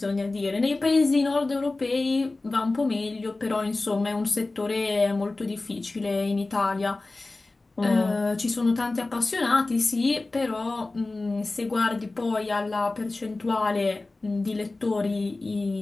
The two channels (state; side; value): quieter; right; 3.2 dB